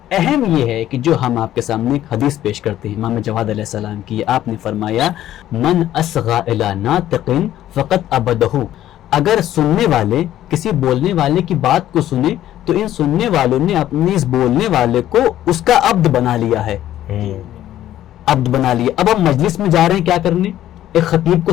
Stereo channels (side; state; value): right; quieter; 12.7 dB